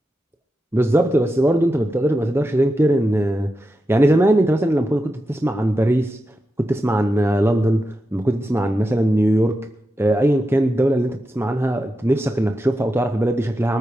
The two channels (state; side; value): normal; both; correlation 0.89